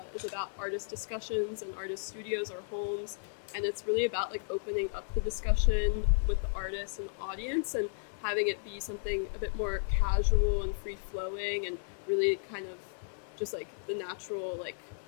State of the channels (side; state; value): right; silent; 55 dB below the other